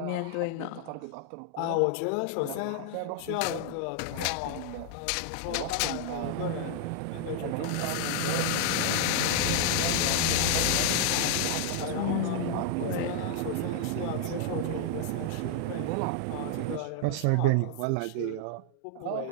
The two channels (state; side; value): different; both; correlation 0.00